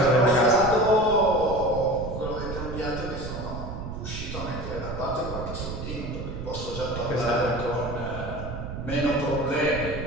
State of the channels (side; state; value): right; noise; rumble, 7 dB below the sound